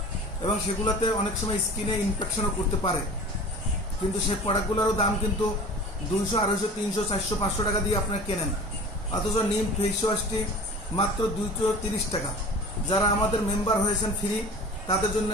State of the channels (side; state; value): both; normal; correlation 0.40